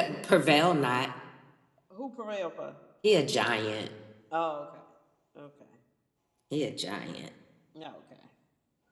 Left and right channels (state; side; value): identical; both; correlation 1.00